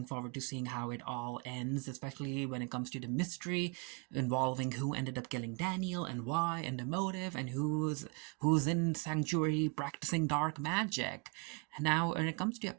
forward to seeing how it all ends, especially when it comes to the mystery involving who ended up killing Daniel, and why, and the motive, and who's in Sanctuary practicing dark magic. Now, when it comes to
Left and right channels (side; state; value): left; quieter; 31.7 dB